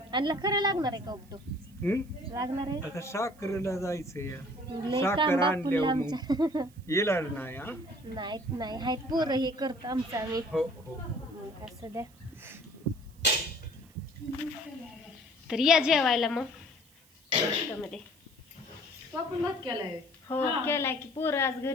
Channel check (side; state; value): right; noise; hiss, 28 dB below the sound